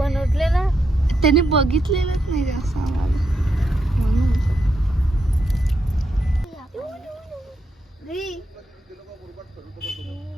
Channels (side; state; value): both; normal; correlation 0.82